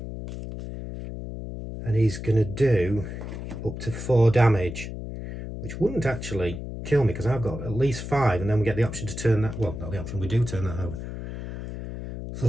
And he's going to do up to 4 damage, which wouldn't actually kill me because I've got at least 5, and then we get the option to turn that, well, not the option, we do turn that over. So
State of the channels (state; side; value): noise; left; hum, 8 dB below the sound